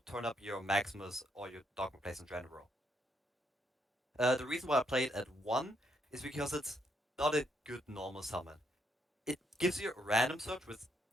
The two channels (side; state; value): both; normal; correlation 0.75